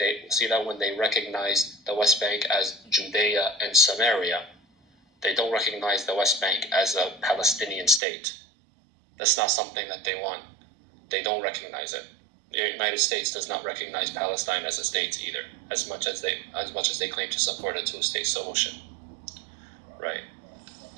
when they recognize the West Bank as Judea and Samaria. They don't recognize the West Bank as a Palestinian state. That's not something that they want. They don't recognize it. The United States does not recognize Palestine as a state either, as much as they claim to support a two-state solution. Right?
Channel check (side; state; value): left; drops out; at 8.0 s